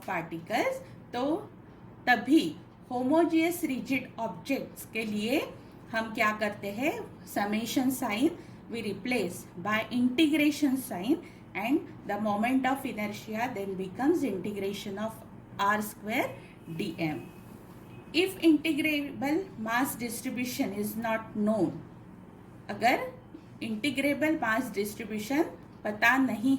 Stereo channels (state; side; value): identical; both; correlation 1.00